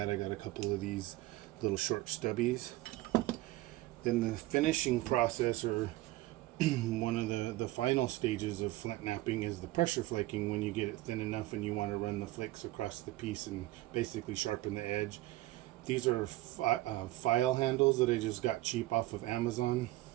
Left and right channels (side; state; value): left; quieter; 17.7 dB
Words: I got a couple of these little short stubbies. Then the finishing process, or one of the final stages of flint knapping, is the pressure flaking. When you get it thin enough and you want to run the flakes across the piece and basically sharpen the edge. These are file handles that I just got cheap off of Amazon.